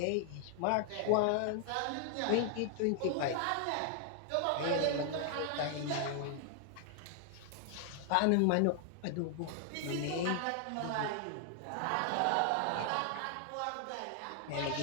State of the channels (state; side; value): different; both; correlation 0.00